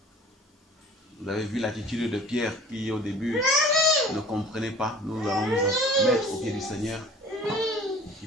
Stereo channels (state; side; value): normal; both; correlation 0.46